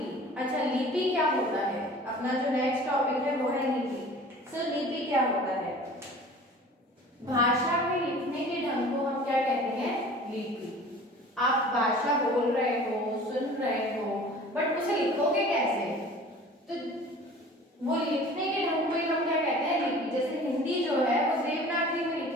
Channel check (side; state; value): both; normal; correlation 0.44